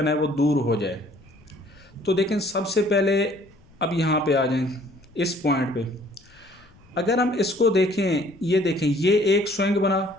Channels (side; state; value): left; noise; rumble, 29 dB below the sound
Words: है वो दूर हो जाए। तो देखें, सबसे पहले अब यहाँ पे आ जाएं इस पॉइंट पे। अगर हम इसको देखें, ये देखें, ये एक स्विंग बना,